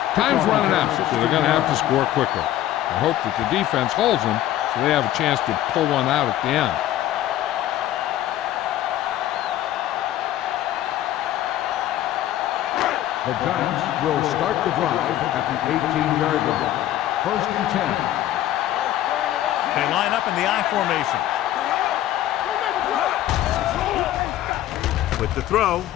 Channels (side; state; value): right; quieter; 13.3 dB